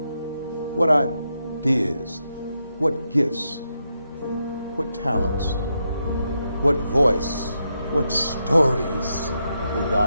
what ideas, what gifts, what talents, what voice, what stories will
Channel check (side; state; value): both; inverted; correlation -0.83